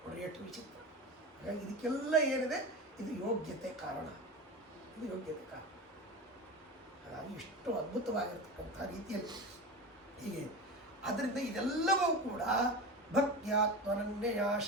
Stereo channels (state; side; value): normal; both; correlation 0.27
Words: ನೋಡಿ, ಎಷ್ಟು ವಿಚಿತ್ರ. ಹಾಗಾಗಿ ಇದಕ್ಕೆಲ್ಲ ಏನಿದೆ, ಇದು ಯೋಗ್ಯತೆ ಕಾರಣ, ಇದು ಯೋಗ್ಯತೆ ಕಾರಣ. ಹಾಗಾಗಿ ಇಷ್ಟು ಅದ್ಭುತವಾಗಿರ್ತಕ್ಕಂಥ ರೀತಿಯಲ್ಲಿ ಹೀಗೆ. ಆದ್ದರಿಂದ ಇದೆಲ್ಲವೂ ಕೂಡ ಭಕ್ತ್ಯಾತ್ಮನನ್ಯಯ